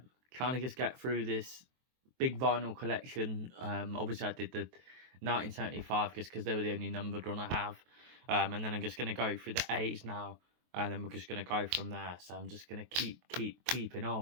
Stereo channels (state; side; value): late; left; 23 ms